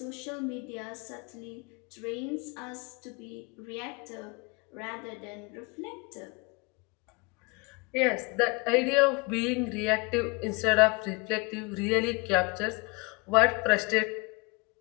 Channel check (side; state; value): right; quieter; 28.2 dB